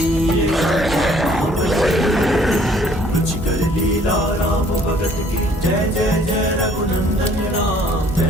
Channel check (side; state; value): both; normal; correlation 0.59